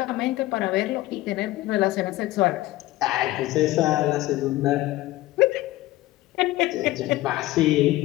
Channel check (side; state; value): right; quieter; 17.2 dB